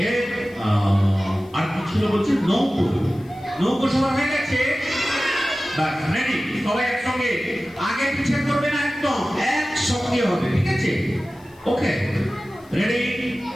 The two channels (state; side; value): noise; left; hiss, 29 dB below the sound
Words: এর আর কি ছিল বলছি? নৌকো। নৌকো সবার হয়ে গেছে? বাস রেডি? সবাই একসঙ্গে, আগে পিছিয়ে করবে না, একদম একসঙ্গে হবে। ঠিক আছে? Okay ready?